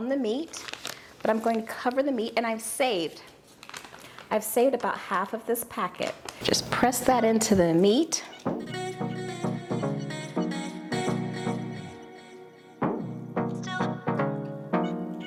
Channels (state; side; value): identical; both; correlation 1.00